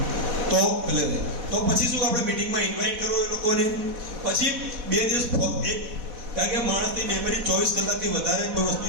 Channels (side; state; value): left; late; 4.1 ms